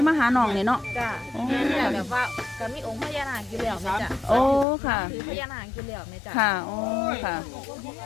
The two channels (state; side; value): drops out; right; at 4.7 s